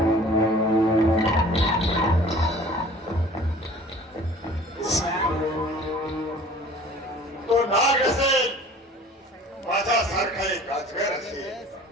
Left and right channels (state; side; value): normal; both; correlation 0.48